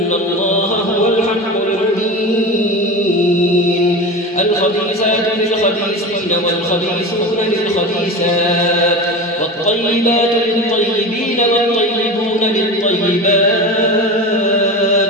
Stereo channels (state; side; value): normal; both; correlation 0.27